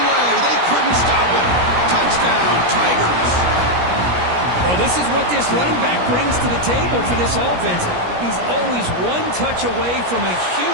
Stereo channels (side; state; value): left; late; 17 ms